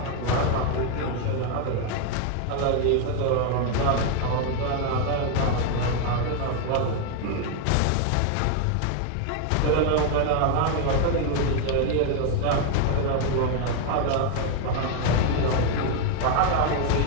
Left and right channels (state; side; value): different; both; correlation 0.01